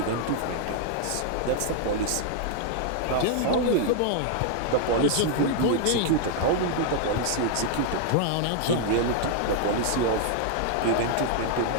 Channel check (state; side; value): different; both; correlation 0.00